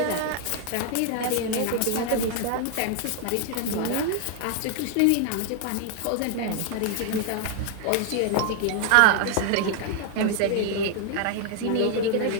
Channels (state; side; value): different; both; correlation 0.00